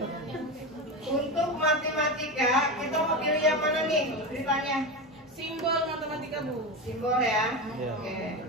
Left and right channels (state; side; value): normal; both; correlation 0.19